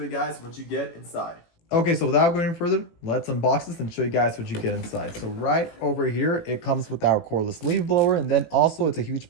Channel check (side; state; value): right; late; 18 ms